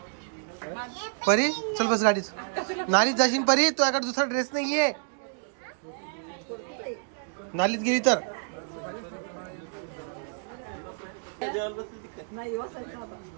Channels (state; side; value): silent; left; digital silence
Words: परी चल बस गाडीत. नालीत जाशील परी. तुझ्याकडे दुसरा ड्रेस नाहीये. नालीत गेली तर